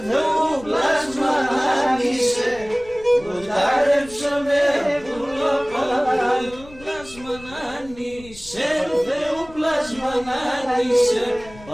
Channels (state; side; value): noise; left; rumble, 20 dB below the sound